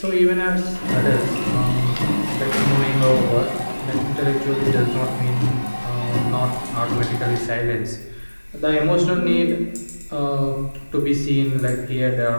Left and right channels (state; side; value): inverted; both; correlation -1.00